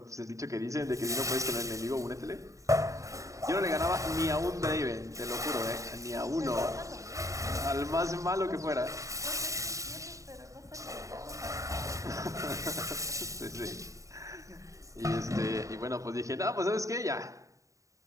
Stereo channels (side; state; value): left; late; 0.16 ms